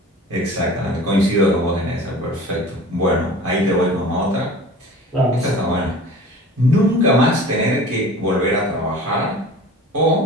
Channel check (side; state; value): both; normal; correlation 0.41